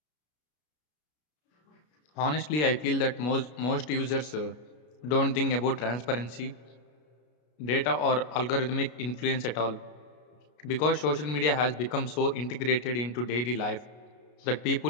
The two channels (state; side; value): late; right; 33 ms